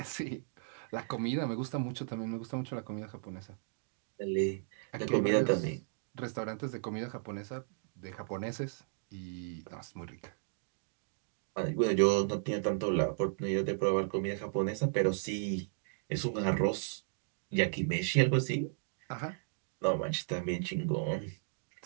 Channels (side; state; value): left; silent; digital silence